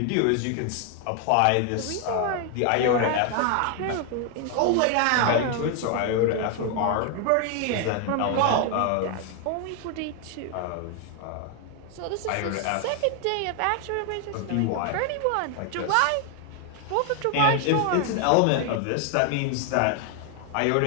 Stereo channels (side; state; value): both; different; correlation 0.00